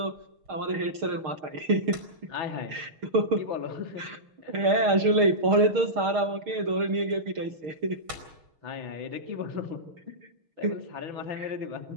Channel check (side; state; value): left; late; 6.5 ms